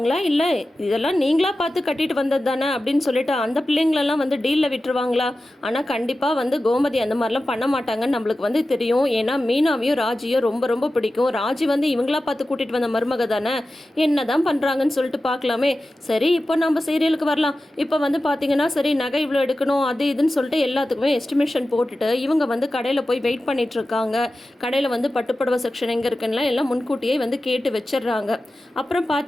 இல்லை இதெல்லாம் நீங்களா பார்த்து கட்டிட்டு வந்தது தானே அப்படின்னு சொல்லிட்டு அந்த பிள்ளைங்களெல்லாம் வந்து டீலில் விட்டுருவாங்களா? ஆனால் கண்டிப்பாக வந்து கோமதி அந்த மாதிரிலாம் பண்ண மாட்டாங்கன்னு நம்மளுக்கு வந்து தெரியும். ஏன்னா மீனாவையும் ராஜியும் ரொம்ப ரொம்ப பிடிக்கும். ராஜி வந்து இவங்களா பார்த்து கூட்டிகிட்டு வந்த மருமக தானே, என்ன தான் பண்ணுறாங்கன்னு சொல்லிட்டு பார்க்கலாமே. சரி, இப்போ நம்ம சீரியலுக்கு வரலாம். இப்போ வந்து பார்த்தீங்கன்னா, சரி நகை இவ்வளோ எடுக்கணும் அது இதுன்னு சொல்லிட்டு எல்லாத்துக்குமே எஸ்டிமேஷன் போட்டுட்டு இவங்க வந்து கடையில் போய் வெயிட் பண்ணிட்டு இருக்காங்க. கடையில் வந்து பட்டுப்புடவை செக்ஷன் எங்கே இருக்குன்னா எல்லாம் முன்கூட்டியே வந்து கேட்டு வச்சிடுறாங்க. அப்புறம்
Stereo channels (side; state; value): both; normal; correlation 0.94